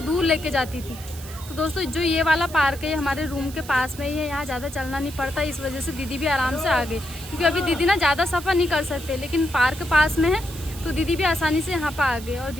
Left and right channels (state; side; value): noise; right; hiss, 16 dB below the sound